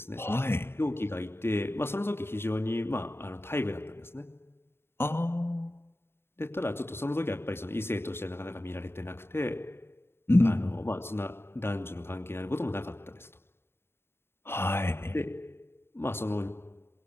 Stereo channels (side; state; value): right; late; 0.11 ms